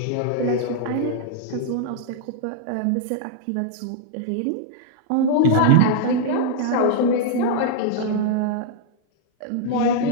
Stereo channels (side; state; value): both; different; correlation -0.01